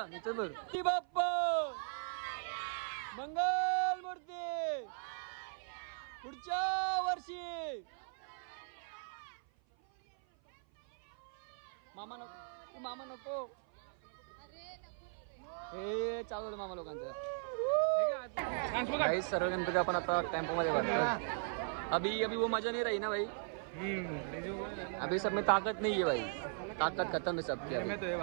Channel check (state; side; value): silent; left; 52 dB below the other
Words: इथं बघ. बाप्पा मंगलमूर्ती पुढच्या वर्षी. मामा नको, मामा नको. हे चालू आहे मामा लोकांचं. भाई सर्व गणपती आपण आता टेम्पो मध्ये भरतो. अभी वो मजा नहीं रही ना भाई. अभी सब में ताकत नहीं है भाई, ताकत खत्म है सबकी.